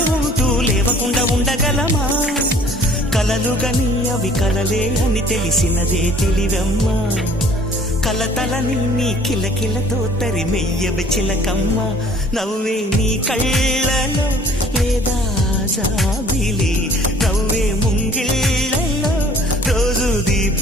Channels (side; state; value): both; normal; correlation 0.54